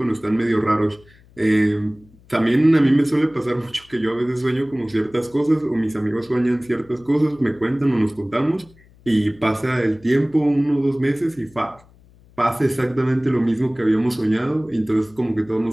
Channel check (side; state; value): left; noise; hum, 28 dB below the sound